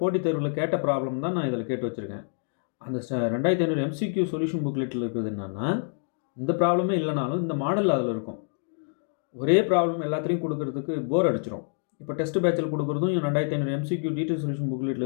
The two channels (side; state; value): right; silent; digital silence